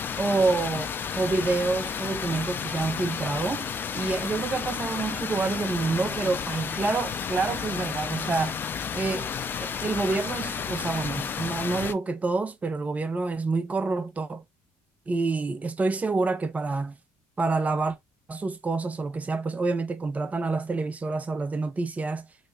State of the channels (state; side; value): normal; both; correlation 0.77